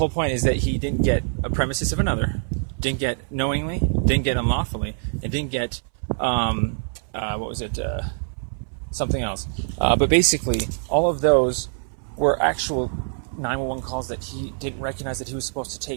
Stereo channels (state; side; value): silent; left; 60 dB below the other